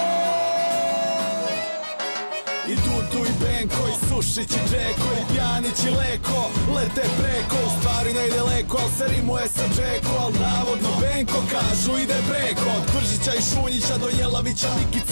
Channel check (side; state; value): both; inverted; correlation -1.00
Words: I Dudu i Benko, i Sušić i Džeko, i Pjanić i Leko lete preko, u stvari ne ide leko, al se rimuje sa Džeko, al navodno Benko kažu ide preko. Od Kvržića i Šunjića do Jelavića,